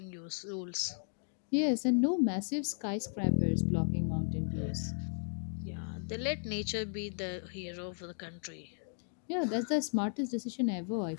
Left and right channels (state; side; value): silent; right; 54 dB below the other